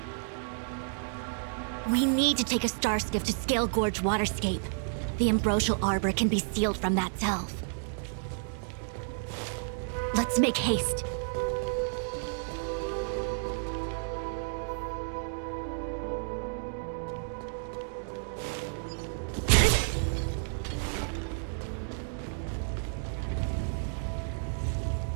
We need to take a star skiff to Scale Gorge Waterscape. The Ambrosial Arbor can be sealed from that delve. Let's make haste.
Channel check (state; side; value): silent; left; digital silence